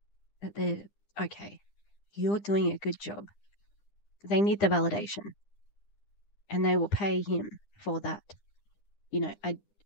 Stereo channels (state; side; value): late; right; 9.9 ms